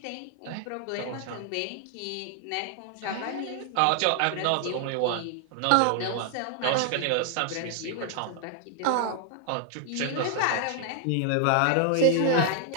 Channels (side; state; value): both; different; correlation 0.00